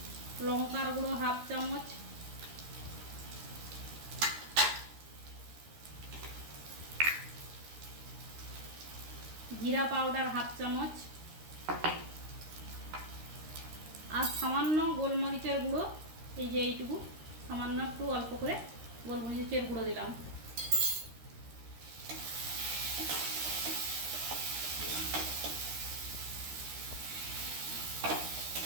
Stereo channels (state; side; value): late; left; 13 ms